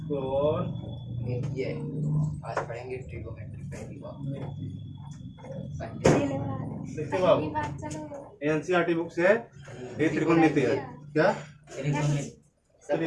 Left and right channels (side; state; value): both; identical; correlation 1.00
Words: ये आज पढ़ेंगे ट्रिगोनोमेट्री पहली बार। देखिए बाबू, एनसीईआरटी बुक से ये त्रिकोणमिति है। क्या? चलिए